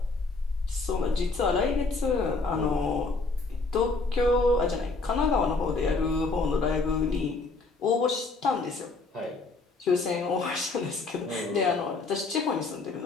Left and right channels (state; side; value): quieter; right; 3.7 dB